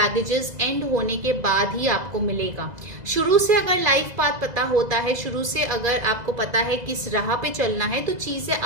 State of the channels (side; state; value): left; late; 2.0 ms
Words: एंड होने के बाद ही आपको मिलेगा। शुरू से अगर लाइफ पाथ पता होता है, शुरू से अगर आपको पता है किस राह पे चलना है तो चीजें